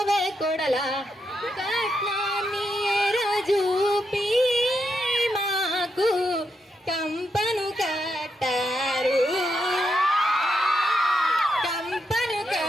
కోడలా కట్నాన్ని రాజూపి మాకు కంపను కట్టారు కంపను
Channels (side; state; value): both; normal; correlation 0.82